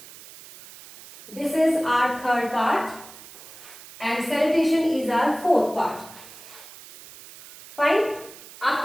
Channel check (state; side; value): noise; right; hiss, 18 dB below the sound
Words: This is our third part and salutation is our fourth part. Fine.